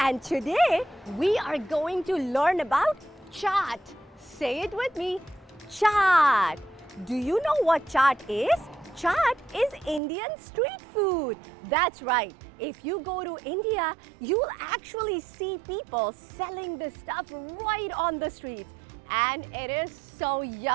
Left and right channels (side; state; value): left; drops out; at 10.0 s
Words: today we are going to learn about chaat. Say it with me, chaat. Do you know what chaat is? Chaat is Indian street food. That's right. If you go to India, you'll actually see people selling this stuff right on the streets. And it is so